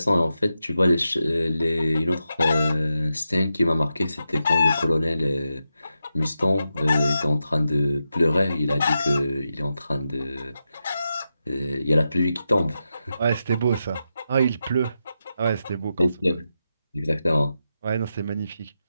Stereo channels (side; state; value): both; inverted; correlation -0.88